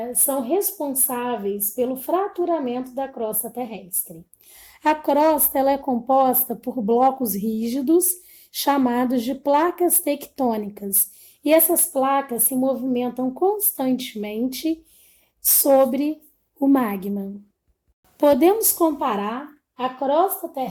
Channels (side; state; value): both; identical; correlation 1.00